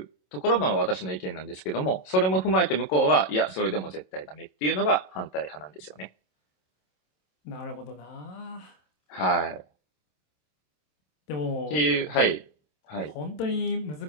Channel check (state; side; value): late; right; 27 ms